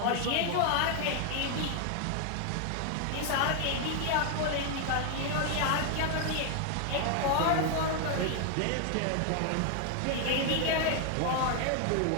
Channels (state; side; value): different; both; correlation 0.00